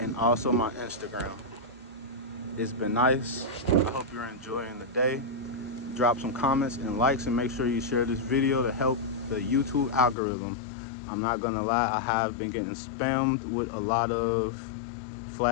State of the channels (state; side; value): drops out; right; at 10.2 s